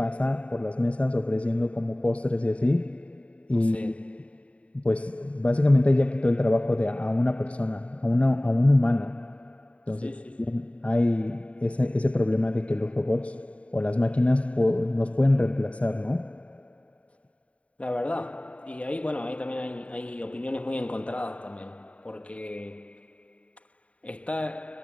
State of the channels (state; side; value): late; right; 0.064 ms